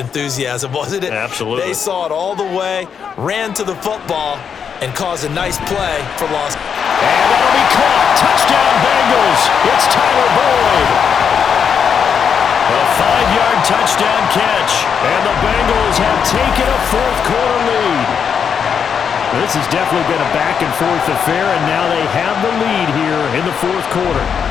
enthusiasm, wasn't it? Absolutely. They saw it all the way, ran to the football, and caused a nice play for loss. And that'll be caught. Touchdown Bengals. It's Tyler Boyd. A 5-yard touchdown catch. And the Bengals have taken a fourth-quarter lead. This has definitely been a back-and-forth affair, and now they have the lead here in the fourth quarter.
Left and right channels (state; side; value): quieter; right; 7.1 dB